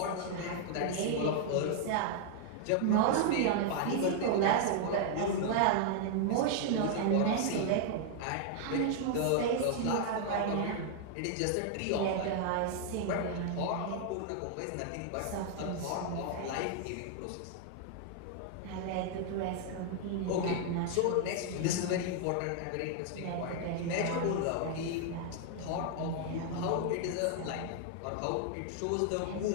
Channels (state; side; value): different; both; correlation 0.00